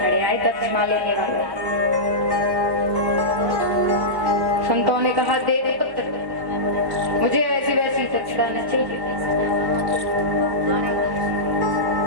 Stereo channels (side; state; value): left; late; 1.1 ms